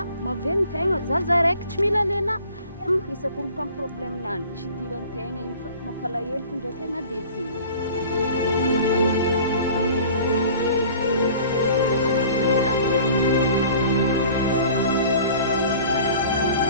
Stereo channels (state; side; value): inverted; both; correlation -0.46